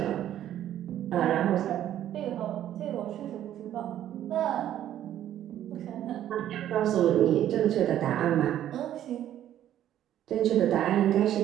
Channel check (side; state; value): left; quieter; 11.6 dB